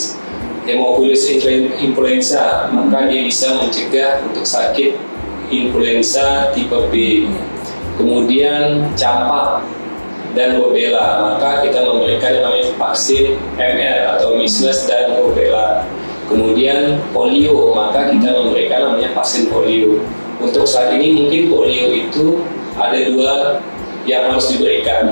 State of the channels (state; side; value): inverted; both; correlation -1.00